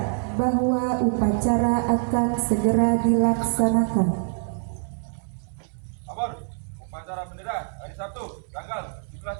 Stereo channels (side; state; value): left; silent; 62 dB below the other